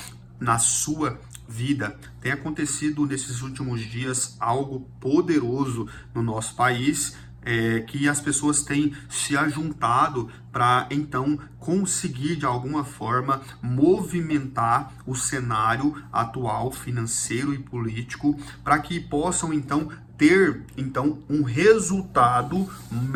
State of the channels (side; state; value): both; identical; correlation 1.00